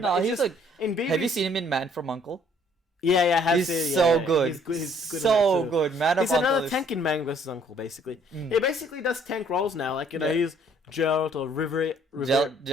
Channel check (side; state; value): both; normal; correlation 0.61